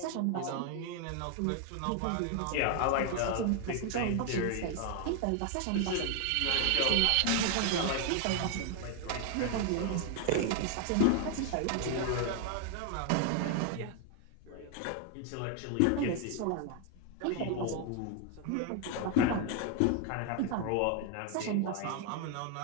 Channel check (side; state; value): both; different; correlation 0.01